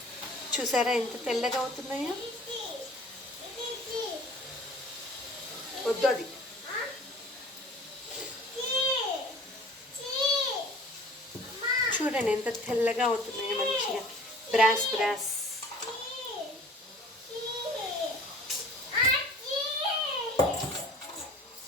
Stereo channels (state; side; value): normal; both; correlation 0.47